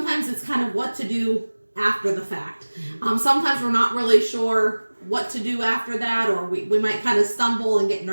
it's kind of what to do after the fact. Sometimes we're not really sure what to do after that, or we might kind of stumble and get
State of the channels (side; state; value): both; inverted; correlation -1.00